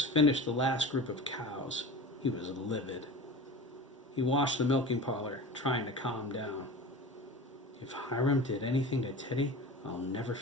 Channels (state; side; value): normal; both; correlation 0.33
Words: finished the last group of cows, he was livid. He washed the milking parlor, trying to calm down. If Hiram did anything to Teddy, I'll never